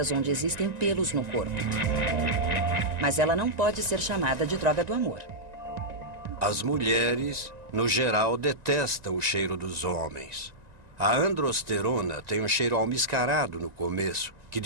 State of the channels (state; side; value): late; left; 1.9 ms